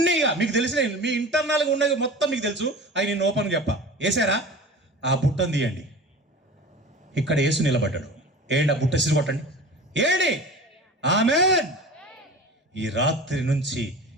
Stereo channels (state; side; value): normal; both; correlation 0.36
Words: మీకు తెలిసిన మీ ఇంటర్నల్గా ఉన్నది మొత్తం మీకు తెలుసు. అవి నేను ఓపెన్ చెప్పా. వేసారా? ఆ బుట్టను తీయండి. ఇక్కడ యేసు నిలబడ్డాడు. ఏంటి? ఆ బుట్ట సిరి కొట్టండి. ఏంటి? ఆమేన్. ఈ రాత్రి నుంచి